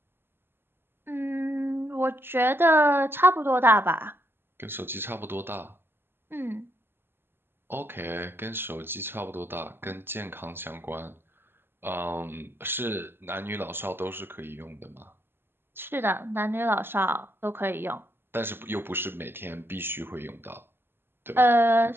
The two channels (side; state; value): left; late; 0.11 ms